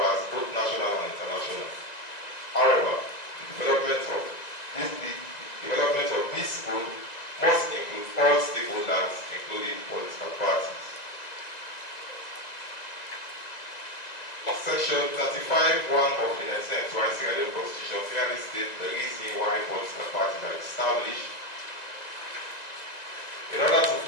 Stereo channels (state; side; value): late; right; 2.0 ms